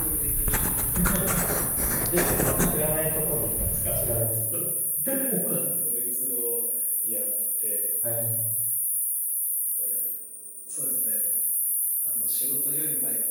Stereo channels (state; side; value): identical; both; correlation 1.00